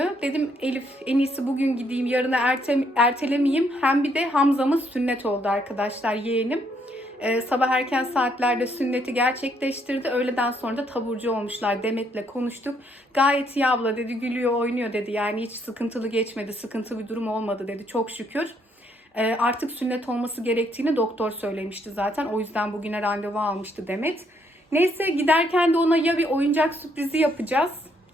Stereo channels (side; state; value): both; normal; correlation 0.71